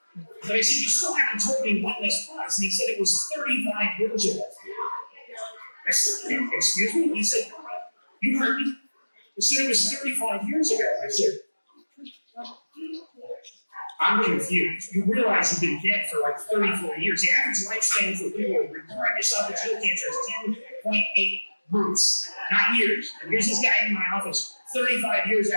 But I said, you still haven't told me when this was. And he said, it was 35 years ago. I said, excuse me? He said, you heard me? He said, it was 35 years ago. I said, I'm confused. You realize you've been dead for like 34 years. The average lifespan for people with recurrent esophageal cancer is 10.8 months, not years. And here's this guy in my office 35 years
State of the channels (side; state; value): both; inverted; correlation -1.00